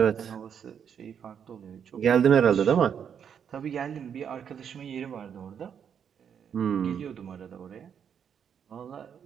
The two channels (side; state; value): left; quieter; 7.9 dB